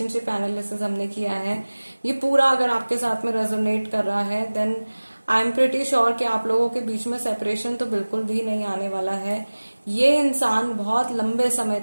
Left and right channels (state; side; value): inverted; both; correlation -1.00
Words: एनालिसिस हमने किया है ये पूरा अगर आपके साथ में रेजोनेट कर रहा है, then I am pretty sure कि आप लोगों के बीच में सेपरेशन तो बिल्कुल भी नहीं आने वाला है। ये इंसान बहुत लंबे समय